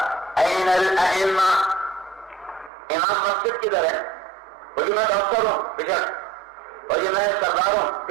این الائمہ، امام مسجد کدھر ہے؟ وہ جی میں ڈاکٹر ہوں بشک، اور یہ میں سردار ہوں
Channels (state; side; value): drops out; left; at 2.7 s